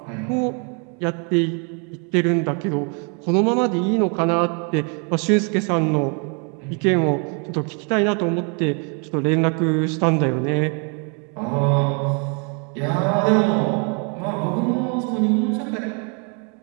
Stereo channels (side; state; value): left; quieter; 37.0 dB